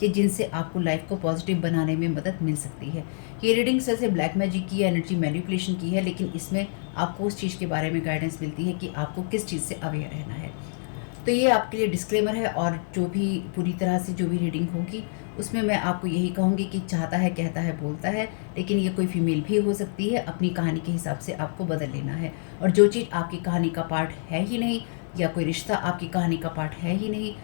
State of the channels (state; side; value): silent; right; digital silence